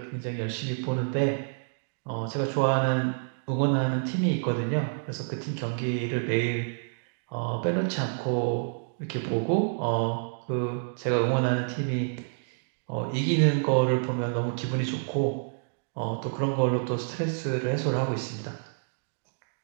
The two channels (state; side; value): silent; left; digital silence